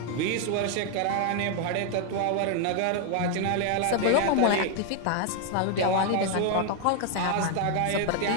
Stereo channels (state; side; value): different; both; correlation 0.00